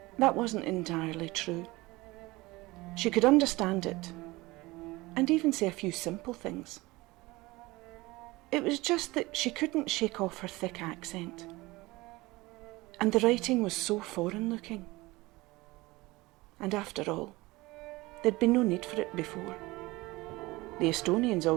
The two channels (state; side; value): quieter; left; 21.1 dB